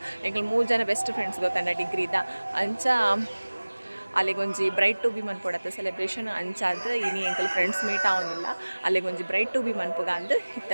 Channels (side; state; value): both; inverted; correlation -1.00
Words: ಎಂಕಲ್ ಮೂರು ಜನ ಬೆಸ್ಟ್ ಫ್ರೆಂಡ್ಸ್ ಗೊತ್ತಂಡ ಡಿಗ್ರಿದ ಅಂಚ ಅಲ್ಲಿಗೊಂಜಿ ಬ್ರೈಟ್ ಟು ಬಿ ಮನ್ಪೊಡತ್ತೆ ಸೆಲೆಬ್ರೇಷನ್ ಅಂಚಾದ ಇನಿ ಎಂಕಲ್ ಫ್ರೆಂಡ್ಸ್ ಮೀಟ್ ಆವೊಂದಿಲ್ಲ ಅಲ್ಲಿಗೊಂಜಿ ಬ್ರೈಟ್ ಟು ಬಿ ಮನ್ಪುಗ ಅಂದ್